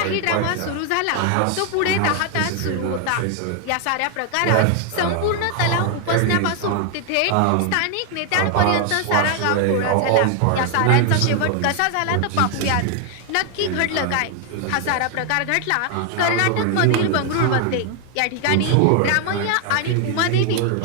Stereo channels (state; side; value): different; both; correlation 0.00